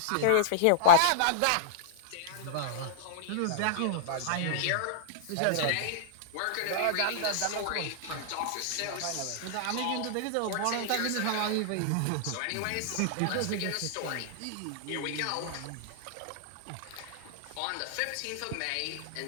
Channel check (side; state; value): both; different; correlation -0.02